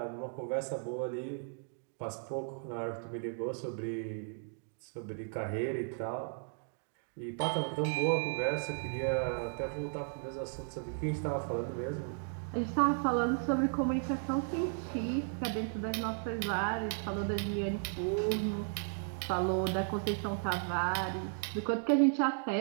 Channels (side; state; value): left; silent; 54 dB below the other